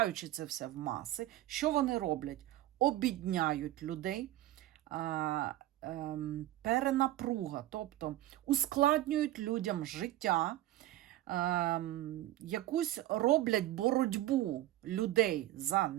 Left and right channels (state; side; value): quieter; left; 15.1 dB